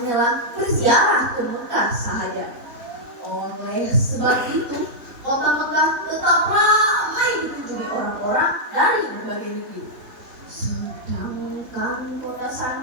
berziarah ke Mekah sahaja. Oleh sebab itu, kota Mekah tetap ramai dikunjungi orang-orang dari berbagai negeri. Sedangkan kota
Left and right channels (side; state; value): left; late; 3.7 ms